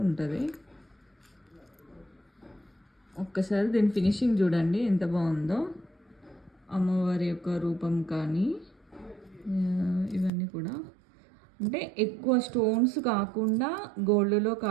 ఉంటుంది. ఒక్కసారి దీని ఫినిషింగ్ చూడండి ఎంత బాగుందో. అమ్మవారి యొక్క రూపం కానీ ఇవన్నీ కూడా అంటే ఎక్కువ స్టోన్స్ కాకుండా గోల్డ్లో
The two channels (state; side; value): drops out; left; at 10.3 s